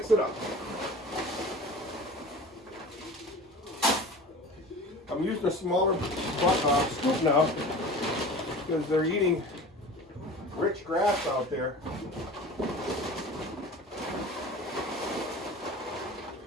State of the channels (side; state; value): both; normal; correlation 0.38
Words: it up. I'm using a smaller scoop now because they're eating rich grass out there.